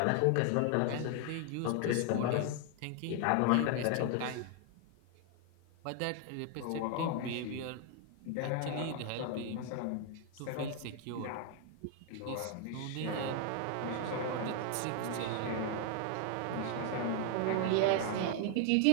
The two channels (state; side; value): different; both; correlation 0.00